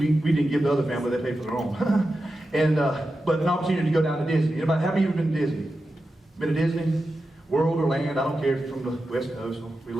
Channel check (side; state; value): both; normal; correlation 0.91